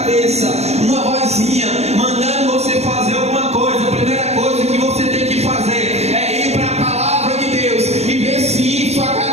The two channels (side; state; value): left; late; 0.31 ms